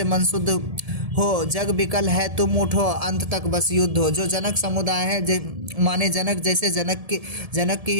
मन शुद्ध हो, जग विकल है तुम उठो, अंत तक बस युद्ध हो। जो जनक समुदाय है, माने जनक जैसे जनक की ही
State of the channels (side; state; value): left; late; 1.7 ms